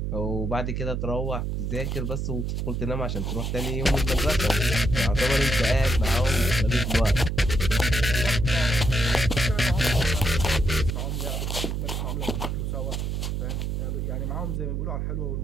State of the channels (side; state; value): right; noise; hum, 1 dB below the sound